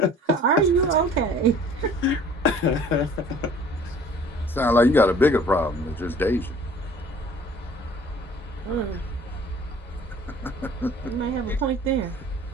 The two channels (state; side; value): normal; both; correlation 0.51